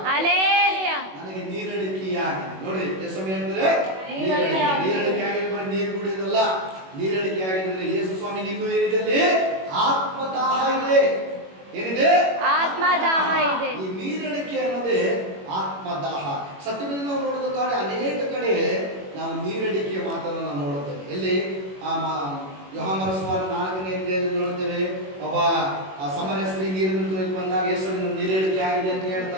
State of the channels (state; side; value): late; left; 21 ms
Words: ನನಗೆ ನೀರಡಿಕೆಯಾಗಿ ನೋಡ್ರಿ, ಯೇಸು ಹೇಳ್ತಾರೆ ನೀರಡಿಕೆ ಆಗಿ ಬರೀ ನೀರು ಕುಡಿಯೋದಲ್ಲ. ನೀರಡಿಕೆ ಆಗಿದ್ರೆ ಯೇಸು ಸ್ವಾಮಿಗೆ ಇನ್ನೂ ಏನಿದೆ? ಆತ್ಮದಾಹ ಇದೆ. ಏನಿದೆ? ಆತ್ಮದಾಹ ಇದೆ. ಈ ನೀರಡಿಕೆ ಅನ್ನೋದೇ ಆತ್ಮದಾಹ. ಸತ್ಯದಲ್ಲಿ ನಾವು ನೋಡೋದಕ್ಕಾದ್ರೆ ಅನೇಕ ಕಡೆ ನಾವು ನೀರಡಿಕೆಯ ಮಾತನ್ನು ನಾವು ನೋಡುತ್ತೇವೆ. ಎಲ್ಲಿ ಯೋಹಾನನ ಸುವಾರ್ತೆ 4ನೇ ಅಧ್ಯಾಯದಲ್ಲಿ ನೋಡ್ತೇವೆ, ಒಬ್ಬ ಸಮರ ಸ್ತ್ರೀ ನೀರನ್ನು ತೊಳೆದು ಬಂದಾಗ ಯೇಸುವಿನ ನೀರೇಳಿಕೆ ಆಗಿದೆ ಅಂತ